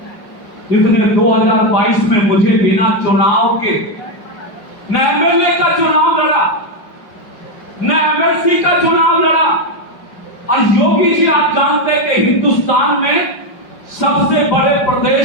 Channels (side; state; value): right; late; 5.3 ms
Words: जिसने 2022 में मुझे बिना चुनाव के न एमएलए का चुनाव लड़ा, न एमएलसी का चुनाव लड़ा। और योगी जी, आप जानते हैं कि हिंदुस्तान में सबसे बड़े